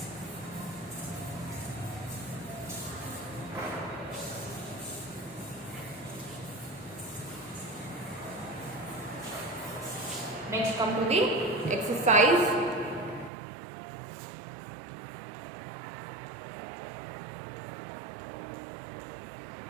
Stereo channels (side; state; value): left; drops out; at 13.3 s